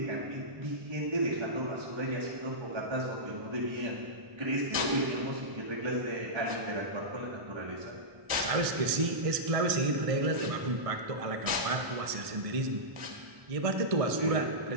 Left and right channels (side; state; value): left; late; 1.6 ms